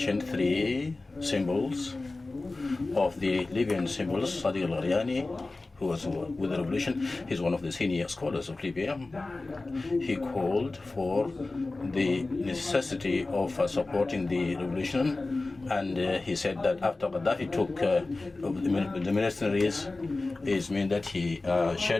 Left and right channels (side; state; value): right; quieter; 3.3 dB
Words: 3 symbols of the Libyan symbols. Sadiq al-Gharyani, who was with the revolution, he's one of the senior scholars of Libya. He called for the necessity of supporting the revolution, and he said that after Gaddafi took the mercenaries, it means that he